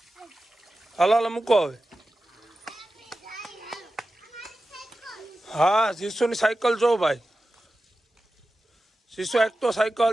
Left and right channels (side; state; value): both; normal; correlation 0.93